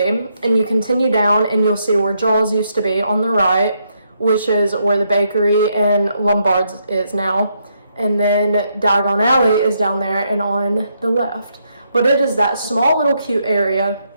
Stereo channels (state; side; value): inverted; both; correlation -0.77